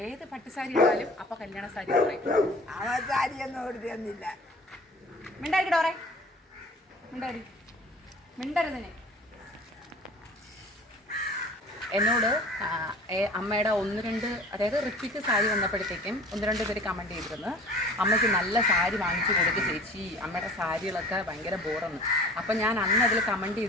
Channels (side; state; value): both; normal; correlation 0.44